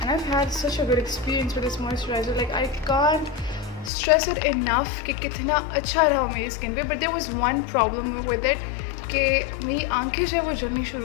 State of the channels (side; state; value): right; drops out; at 3.9 s